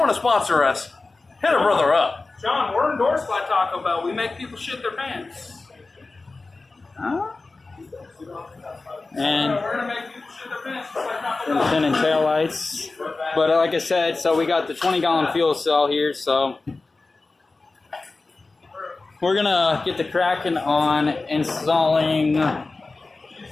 to sponsor us, hit a brother up. John, we're endorsed by Taco Bell. We make people shit their pants. Huh? And We're gonna make people shit their pants just like Taco Bell. fin and tail lights. But like I said, so we got the 20-gallon fuel cell here, so we're gonna get the cracking on installing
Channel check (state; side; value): quieter; right; 3.6 dB